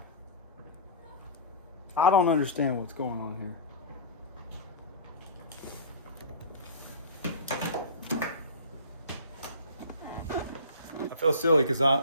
I don't understand what's going on here. I feel silly because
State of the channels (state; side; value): inverted; both; correlation -0.34